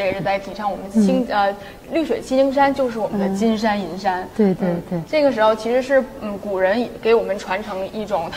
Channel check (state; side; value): identical; both; correlation 1.00